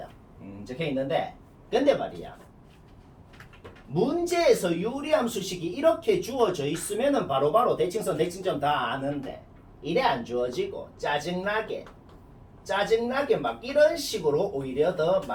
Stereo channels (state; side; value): identical; both; correlation 1.00